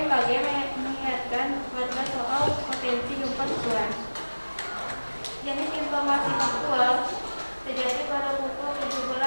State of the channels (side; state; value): both; inverted; correlation -1.00